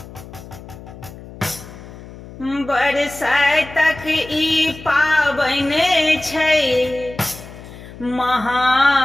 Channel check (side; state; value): left; noise; hum, 16 dB below the sound